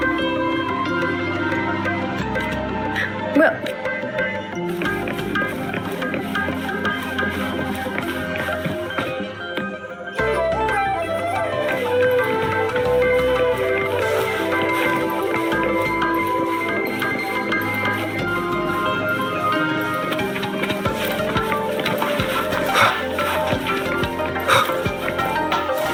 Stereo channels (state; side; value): identical; both; correlation 1.00